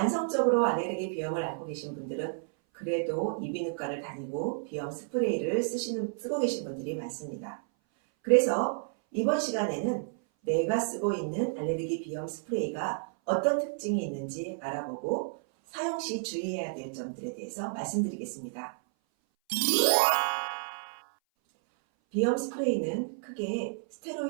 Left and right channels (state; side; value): silent; left; 57 dB below the other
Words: 알레르기 비염을 앓고 계신 분들은 그래도 이비인후과를 다니고 비염 스프레이를 쓰고 계신 분들이 많습니다. 그래서 이번 시간에는 내가 쓰고 있는 알레르기 비염 스프레이가 어떤 특징이 있는지 알아보고 사용 시 주의해야 될 점들에 대해서 말씀드리겠습니다. 비염 스프레이는 크게